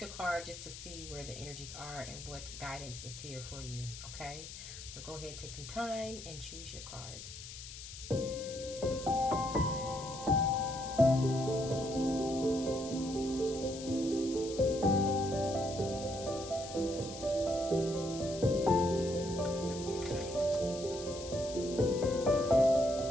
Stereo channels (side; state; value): left; noise; hiss, 12 dB below the sound